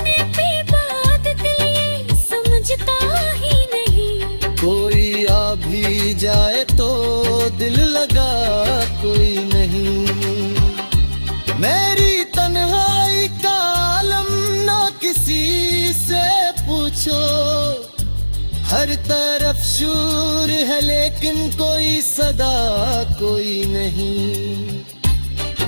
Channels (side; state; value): both; inverted; correlation -1.00